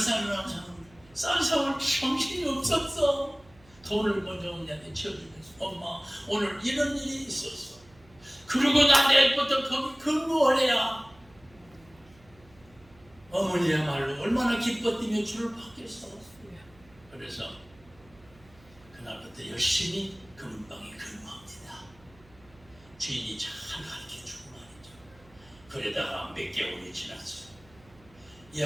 정신이 없었어. 돈을 먼저 언니한테 치워주면서 엄마 오늘 이런 일이 있었어. 그리고 나 내일부터 거기 근무하래야. 어머니야말로 얼마나 기뻐 뛰며 주를 받겠어. 그래서 그날부터 열심히 금은방에 근무합니다. 주인이 잘 가르쳐주고 말이죠. 그러다가 몇 개월이 지났어요. 이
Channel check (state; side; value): noise; right; hum, 26 dB below the sound